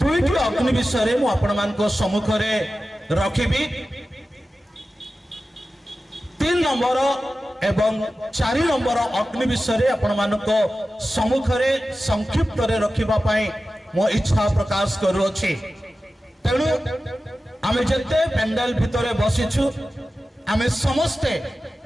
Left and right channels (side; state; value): both; normal; correlation 0.94